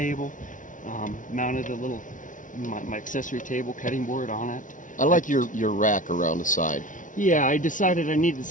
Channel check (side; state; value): right; late; 0.38 ms